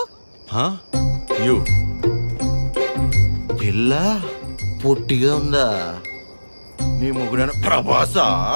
యు పిల్ల పొట్టిగా ఉందా? నీ ముగ్గురైన ప్రభాసా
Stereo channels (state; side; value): inverted; both; correlation -1.00